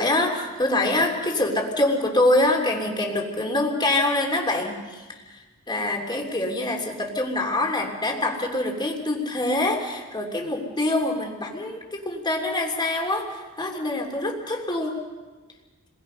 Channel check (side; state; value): both; normal; correlation 0.34